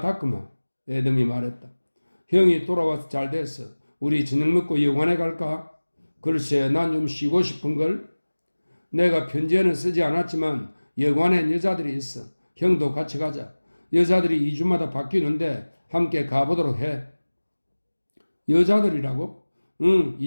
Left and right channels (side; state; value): both; inverted; correlation -1.00